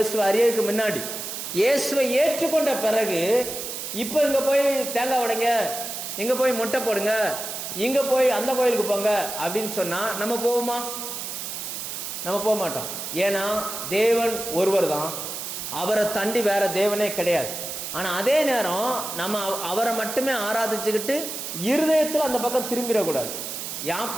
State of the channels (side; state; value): right; noise; hiss, 6 dB below the sound